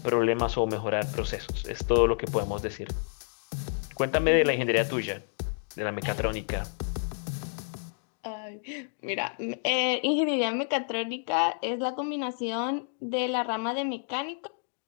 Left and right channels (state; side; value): silent; right; digital silence